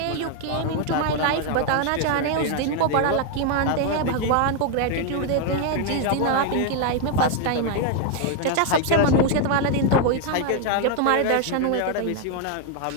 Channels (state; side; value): different; both; correlation 0.00